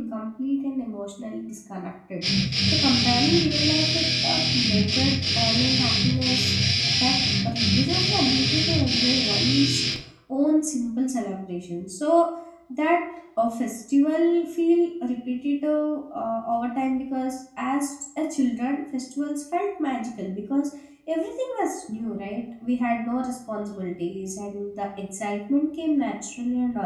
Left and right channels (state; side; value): identical; both; correlation 1.00